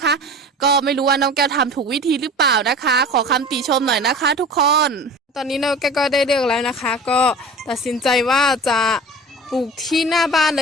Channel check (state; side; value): normal; both; correlation 0.38